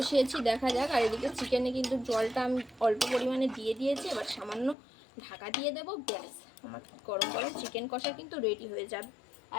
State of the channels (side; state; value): right; drops out; at 4.8 s